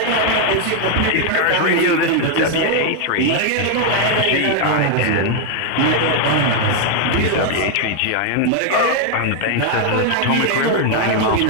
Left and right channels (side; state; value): both; different; correlation 0.00